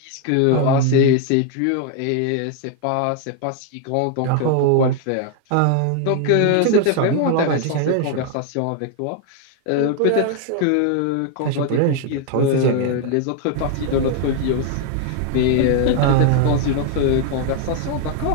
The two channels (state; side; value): different; both; correlation 0.00